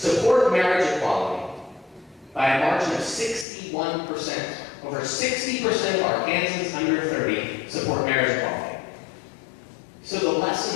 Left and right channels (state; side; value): drops out; right; at 3.5 s